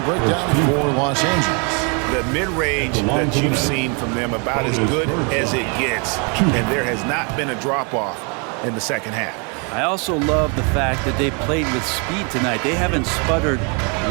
breakdown for Los Angeles. The mid-range that you've seen from them about as good as it gets. And there has not been a drop-off in the second half. I also love the fact that they played with speed tonight. They haven't sputtered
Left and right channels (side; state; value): left; quieter; 34.9 dB